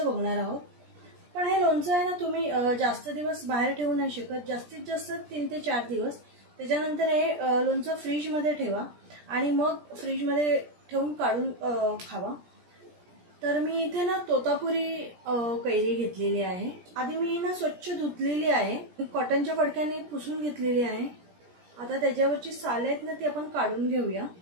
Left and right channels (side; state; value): left; late; 17 ms